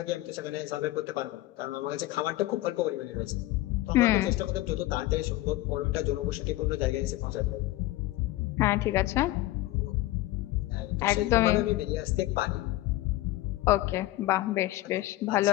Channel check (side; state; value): right; quieter; 17.0 dB